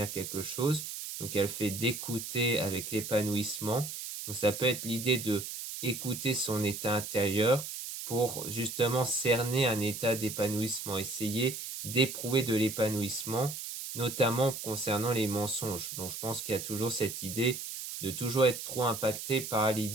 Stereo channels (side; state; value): right; noise; hiss, 7 dB below the sound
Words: quelque chose. Donc elle fait d'écouter avec l'épanouissement. Donc ça peut être l'idée de écouter son état intérieur pour justement cerner un état d'épanouissement, essayer d'éprouver de l'épanouissement notamment concernant les mensonges. Donc je pense qu'il y a toujours cette idée de toujours être trop impacté par